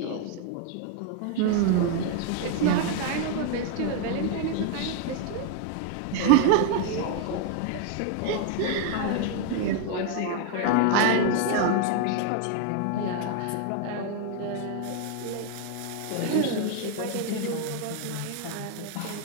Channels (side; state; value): both; different; correlation 0.01